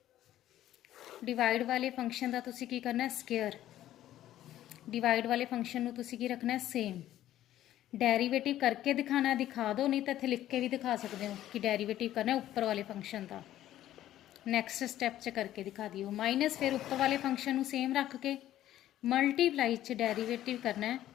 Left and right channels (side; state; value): right; quieter; 13.0 dB